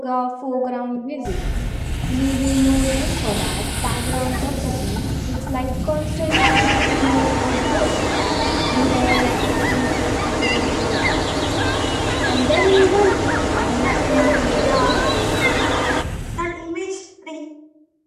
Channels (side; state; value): both; identical; correlation 1.00